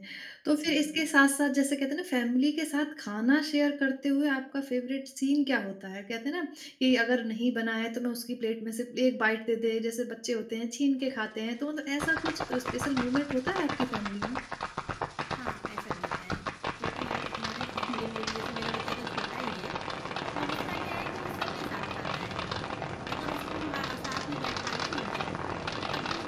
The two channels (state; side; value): identical; both; correlation 1.00